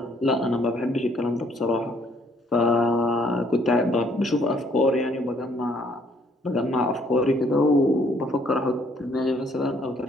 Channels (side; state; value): both; normal; correlation 0.65